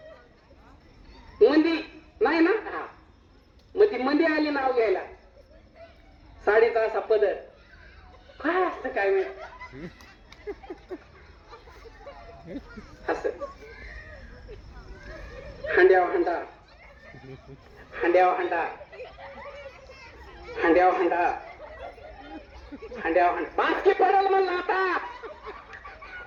मंदी नाही ना. हा मग ती मंदी आली नाव घ्यायला. साडीचा असा पदर काय असतं काय माहिती असं हांड्याव हांडा हांड्याव हांडा हांड्याव हांडा हांड्याव हांडा बाकी पडल म्हणला. आता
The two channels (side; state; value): both; identical; correlation 1.00